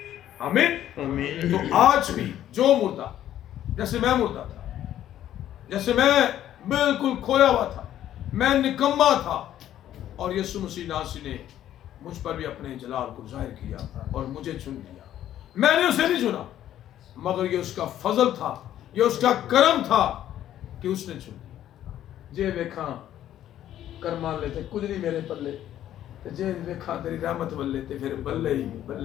آمین. تو آج بھی جو مردہ، جیسے میں مردہ تھا، جیسے میں بالکل کھویا ہوا تھا، میں نکما تھا، اور یسوع مسیح ناصری نے مجھ پر بھی اپنے جلال کو ظاہر کیا اور مجھے چن لیا. میں نے اسے نہیں چنا، مگر یہ اس کا فضل تھا، یہ اس کا کرم تھا کہ اس نے چن لیا. جے ویکھاں کرمان لیتے کچھ نہیں میرے پلے، جے ویکھاں تیری رحمت ولے تے پھر بلے ہی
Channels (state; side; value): quieter; right; 11.8 dB